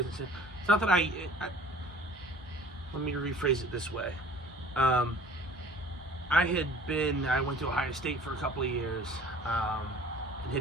it's not that I let me rephrase it this way. I went to Ohio State for a couple of years, and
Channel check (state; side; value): normal; both; correlation 0.48